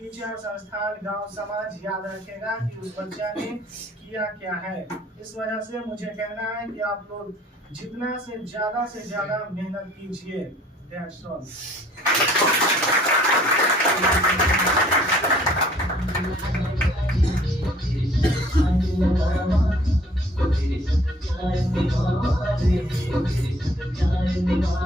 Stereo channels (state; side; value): normal; both; correlation 0.56